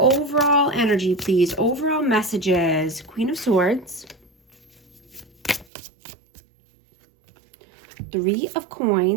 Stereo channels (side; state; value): left; drops out; at 5.7 s